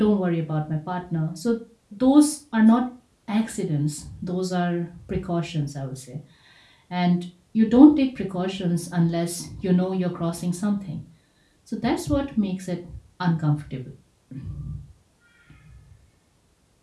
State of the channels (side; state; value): both; identical; correlation 1.00